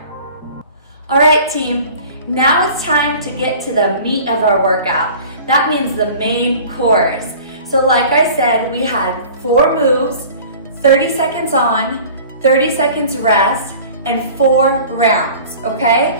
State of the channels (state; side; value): inverted; both; correlation -0.44